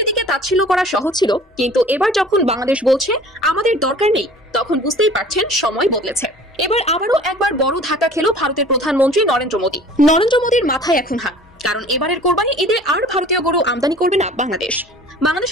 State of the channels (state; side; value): normal; both; correlation 0.47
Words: দিকে তাচ্ছিল্য করা সহজ ছিল, কিন্তু এবার যখন বাংলাদেশ বলছে আমাদের দরকার নেই, তখন বুঝতেই পারছেন সময় বদলেছে। এবার আবারও একবার বড় ধাক্কা খেলো ভারতের প্রধানমন্ত্রী নরেন্দ্র মোদী। নরেন্দ্র মোদীর মাথায় এখন হাত, কারণ এবারের কোরবানি ঈদে আর ভারতীয় গরু আমদানি করবে না বাংলাদেশ।